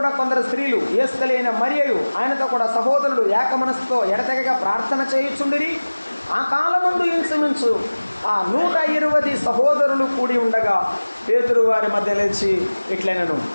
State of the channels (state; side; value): inverted; both; correlation -1.00